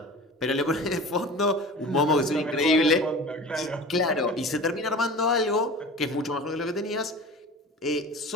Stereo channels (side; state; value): both; normal; correlation 0.37